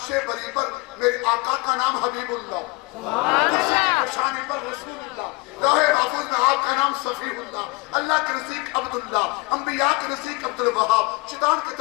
بری پر میرے آقا کا نام حبیب اللہ، عرش کی شان پر رسول اللہ، لوح محفوظ میں آپ کا نام صفی اللہ، اللہ کے نزدیک عبداللہ، انبیاء کے نزدیک عبدالوہاب، شیطان کے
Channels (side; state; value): right; quieter; 25.2 dB